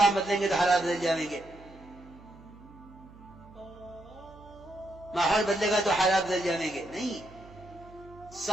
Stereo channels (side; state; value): right; noise; hum, 21 dB below the sound